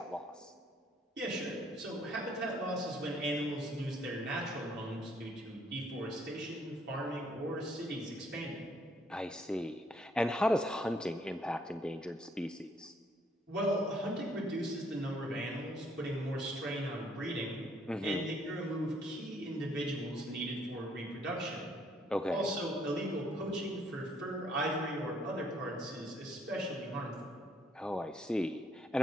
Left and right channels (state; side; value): normal; both; correlation 0.67